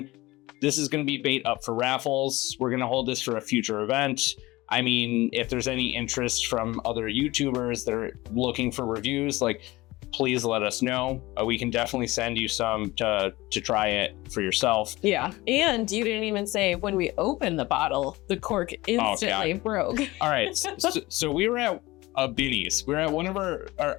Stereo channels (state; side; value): quieter; right; 19.9 dB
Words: this is gonna be bait up for raffles. We're gonna hold this for a future event. I mean, if there's any interest from other YouTubers that are looking for reviews, like, please let us know. We can definitely send you some to try it for yourself. Yeah. And you didn't even say when we opened the bottle, the cork instantly broke. All right. So we were at a Binny's. We were at one of